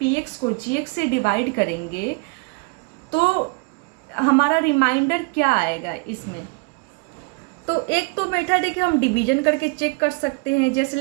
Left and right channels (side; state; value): left; quieter; 30.1 dB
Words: px को gx से डिवाइड करेंगे तो हमारा रिमाइंडर क्या आएगा इसमें। तो एक तो मेथड है कि हम डिवीजन करके चेक कर सकते हैं। जैसे